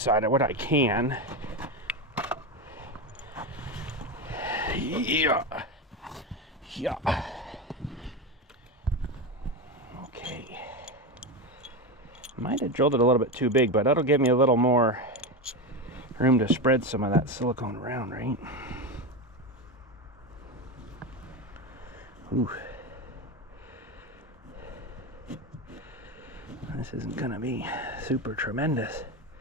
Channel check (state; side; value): normal; both; correlation 0.17